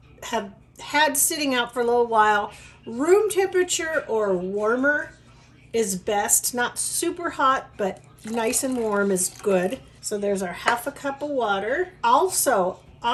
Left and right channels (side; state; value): both; identical; correlation 1.00